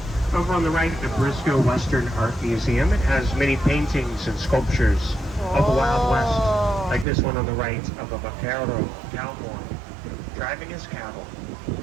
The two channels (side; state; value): left; drops out; at 7.1 s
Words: Over on the right, the Briscoe Western Art Museum. It has many paintings and sculptures of the Wild West, like this one on the right of a vaquero cowboy driving his cattle.